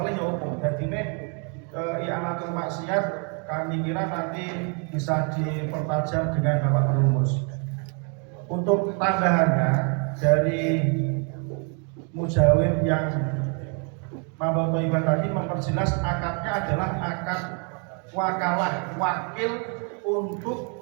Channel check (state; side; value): quieter; left; 38.3 dB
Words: oleh ya umum. Jadi ini i'anatul maksiat kami kira nanti bisa dipertajam dengan Bapak perumus. Untuk tambahannya dari mujawib yang Mabal Toibah tadi memperjelas akadnya adalah akad wakalah, wakil